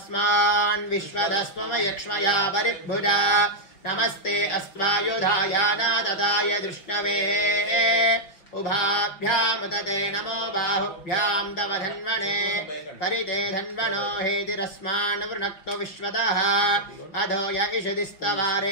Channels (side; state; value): right; late; 5.8 ms